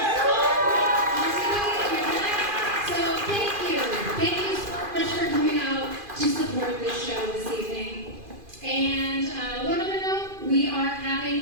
So thank you. Thank you so much for coming out to support this show this evening. And one other note, we are having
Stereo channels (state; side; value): late; left; 2.5 ms